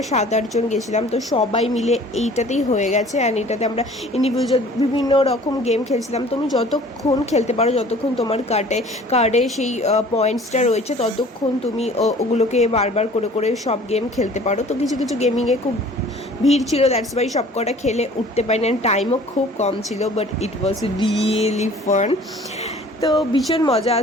7-8 জন গেছিলাম। তো সবাই মিলে এইটাতেই হয়ে গেছে অ্যান্ড এটাতে আমরা ইন্ডিভিজুয়াল বিভিন্ন রকম গেম খেলছিলাম। তুমি যতক্ষণ খেলতে পারো, যতক্ষণ তোমার কার্ডে সেই পয়েন্টসটা রয়েছে ততক্ষণ তুমি ওগুলোকে বারবার করে করে সব গেম খেলতে পারো। তো কিছু কিছু গেমিংয়ে খুব ভিড় ছিল, দ্যাটস ওয়াই সব কটা খেলে উঠতে পারিনি অ্যান্ড টাইমও খুব কম ছিল, but it was really fun. তো ভীষণ মজা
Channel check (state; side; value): normal; both; correlation 0.50